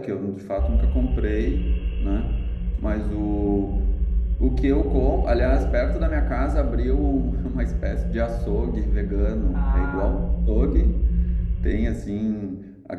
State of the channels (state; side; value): identical; both; correlation 1.00